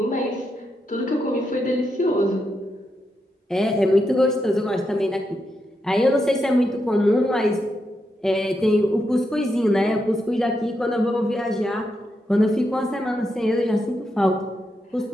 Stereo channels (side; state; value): both; normal; correlation 0.83